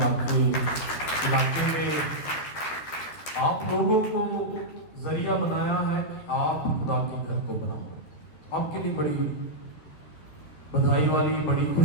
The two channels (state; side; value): late; right; 13 ms